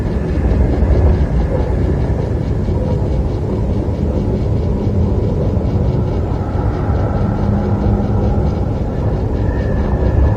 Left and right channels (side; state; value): both; identical; correlation 1.00